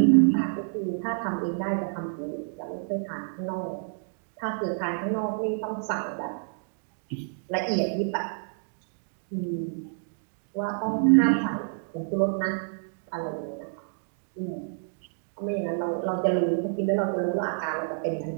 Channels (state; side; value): silent; left; digital silence